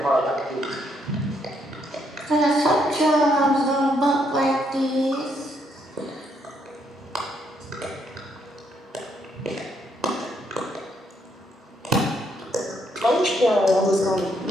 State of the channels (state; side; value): normal; both; correlation 0.73